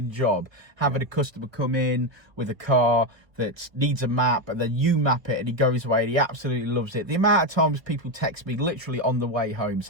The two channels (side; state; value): left; late; 1.6 ms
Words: job having a customer come in with a car that needs a map and then you map it and he goes away and he absolutely loves it. The amount of times people text me literally on the way home